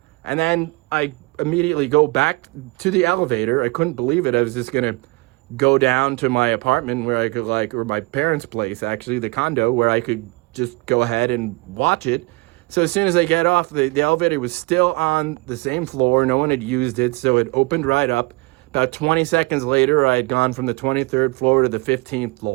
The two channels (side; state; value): left; quieter; 25.0 dB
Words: And then I immediately go back to the elevator. I couldn't believe it. I was just going to go down to my apartment where I could, like, or my parents' place, actually, the condo, where I could just go ahead and watch it. So as soon as I get off, the elevator was still on the same floor. No one had used it, so it opened right up. About 20 seconds later, I had gone from the 23rd floor to the 15th